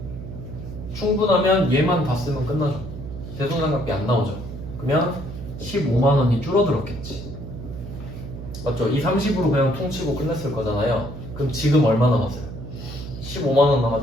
충분하면 얘만 다 쓰면 끝나죠. 대손 상각비 안 나오죠. 그러면 15만 원이 줄어들었겠지. 맞죠? 이 30으로 그냥 퉁치고 끝냈을 거잖아요. 그럼 지금 얼마 남았어요? 15만 원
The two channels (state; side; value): noise; right; hum, 10 dB below the sound